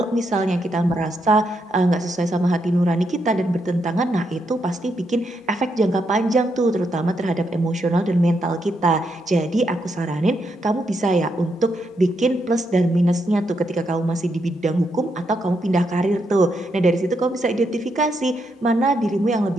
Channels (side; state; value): both; normal; correlation 0.80